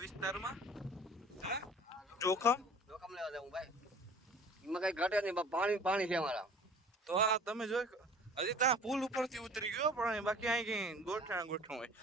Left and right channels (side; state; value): both; normal; correlation 0.46